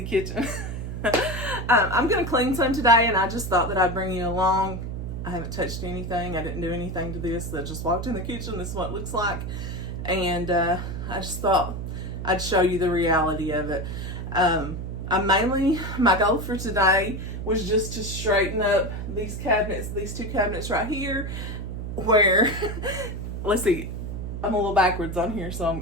kitchen. I'm going to clean some today, and I just thought that I'd bring you along. I haven't touched anything. I didn't do anything to this. I just walked in the kitchen. This is what it looks like. And I just thought I'd show you the reality of it. My goal for today was just to straighten up these cabinets, these two cabinets right here, where, let's see, I'm a little backwards on here, so I'm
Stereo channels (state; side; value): noise; right; hum, 6 dB below the sound